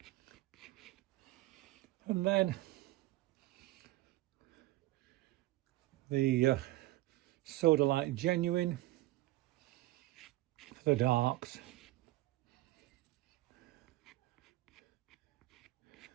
And then the Soda Light Genuine for the darks.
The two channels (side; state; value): left; quieter; 18.2 dB